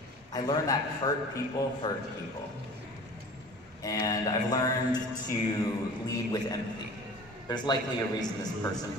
I learned that hurt people hurt people. And I've learned to lead with empathy. There's likely a reason this person,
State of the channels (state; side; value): normal; both; correlation 0.42